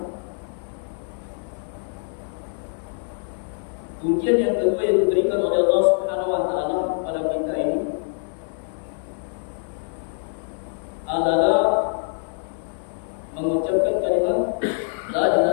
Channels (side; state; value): right; silent; digital silence